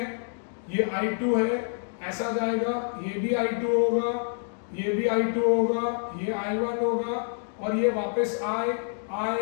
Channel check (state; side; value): silent; right; 60 dB below the other